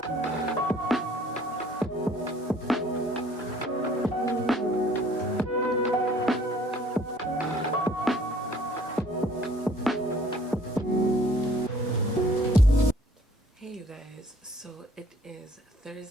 Hey you guys, so it is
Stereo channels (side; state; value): both; normal; correlation 0.57